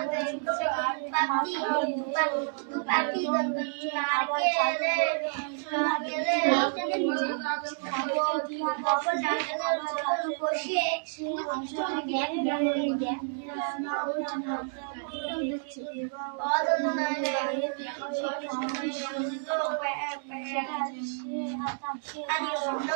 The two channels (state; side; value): silent; left; digital silence